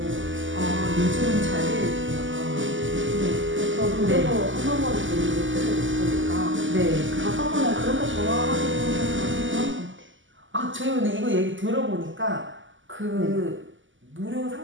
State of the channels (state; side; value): late; left; 0.56 ms